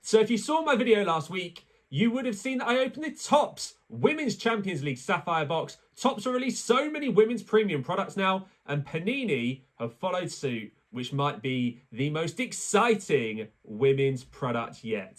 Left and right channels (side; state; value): both; identical; correlation 1.00